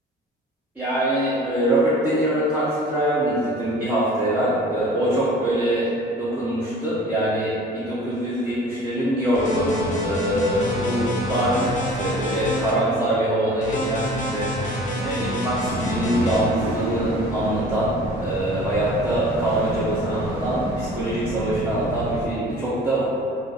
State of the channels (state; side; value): normal; both; correlation 0.45